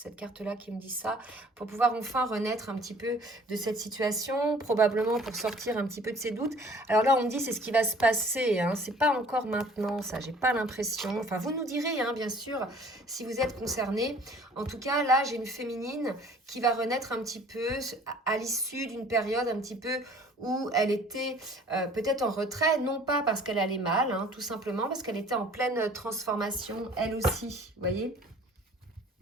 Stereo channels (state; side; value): normal; both; correlation 0.51